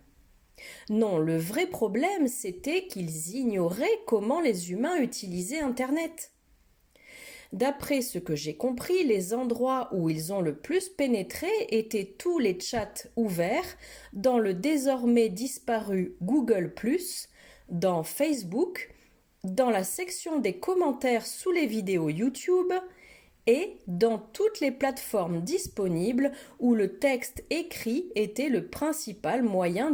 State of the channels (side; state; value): both; identical; correlation 1.00